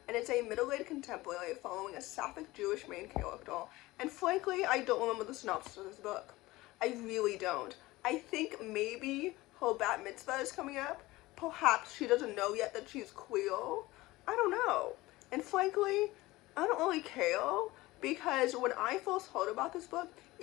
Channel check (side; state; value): right; quieter; 19.3 dB